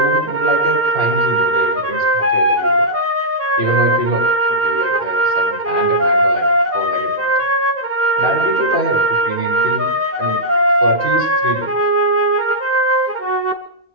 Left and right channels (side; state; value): both; normal; correlation -0.11